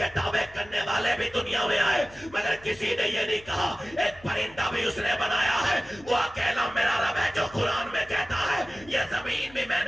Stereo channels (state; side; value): noise; left; hum, 23 dB below the sound